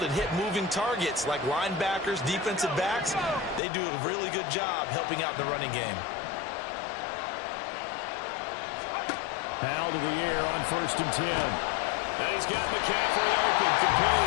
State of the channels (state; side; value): drops out; right; at 3.6 s